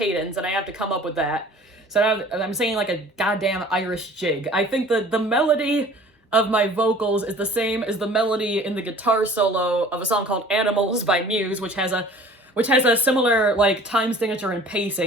and I have to come up with that. So now I'm singing, like, a goddamn Irish jig. I think the melody of my vocals is the same as the melody in the guitar solo of a song called Animals by Muse, which has a similar, like, time signature and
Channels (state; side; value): normal; both; correlation 0.48